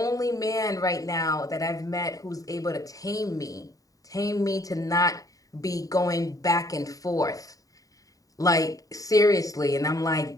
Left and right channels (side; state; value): right; late; 0.17 ms